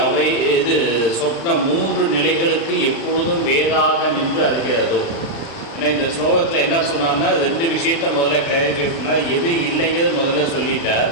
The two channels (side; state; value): right; late; 36 ms